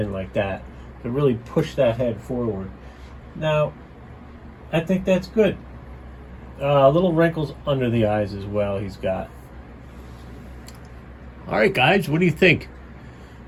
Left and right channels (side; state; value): both; identical; correlation 1.00